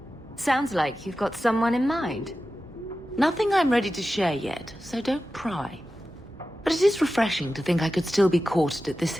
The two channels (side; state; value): both; normal; correlation 0.93